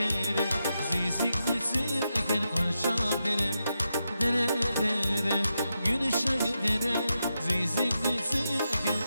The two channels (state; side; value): inverted; both; correlation -0.86